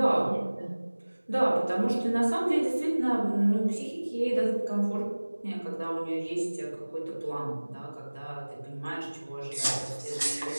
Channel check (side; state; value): both; inverted; correlation -1.00